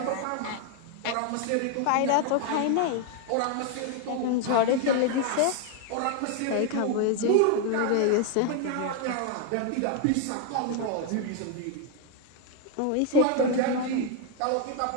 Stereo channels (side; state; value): both; different; correlation 0.01